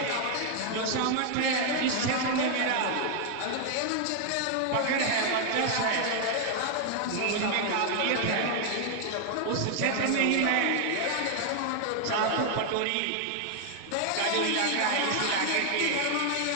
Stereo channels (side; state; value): both; different; correlation 0.00